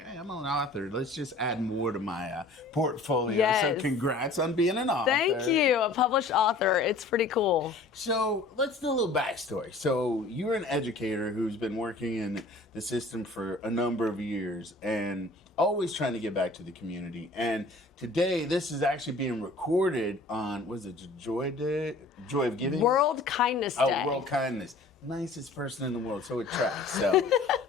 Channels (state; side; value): quieter; right; 3.1 dB